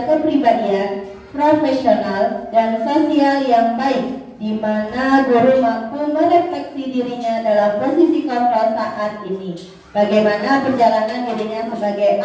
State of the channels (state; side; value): identical; both; correlation 1.00